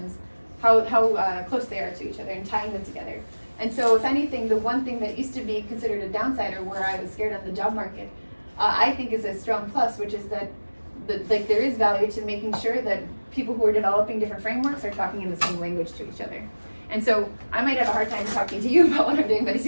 how close they are to each other and tying them together. And so if anything, the one thing that used to be considered a downside, or where I was scared on the job market, I think is a strong plus, which is that like there is value to making sure that people who are developing different frameworks are talking in the same language to each other. And so I might have a hard time talking to you about what I'm doing, but it's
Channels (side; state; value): both; inverted; correlation -1.00